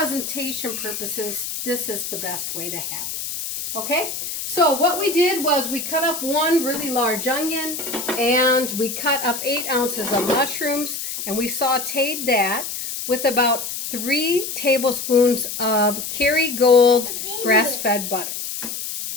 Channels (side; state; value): left; noise; hiss, 6 dB below the sound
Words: purposes, this is the best way to have it. Okay? So what we did was we cut up 1 really large onion, and we cut up 8 ounces of mushrooms, and we sauteed that with about 3 tablespoons of Kerrygold grass-fed butter.